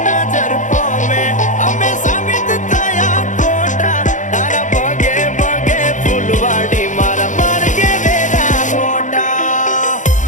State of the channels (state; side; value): late; right; 0.36 ms